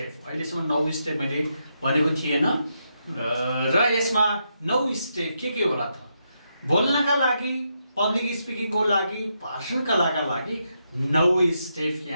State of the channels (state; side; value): inverted; both; correlation -0.82